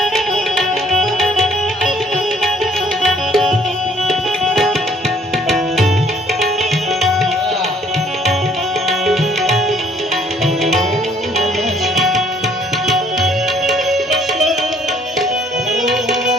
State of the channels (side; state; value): both; normal; correlation 0.60